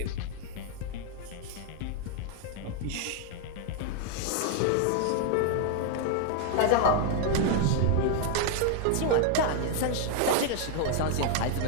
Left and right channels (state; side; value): different; both; correlation 0.00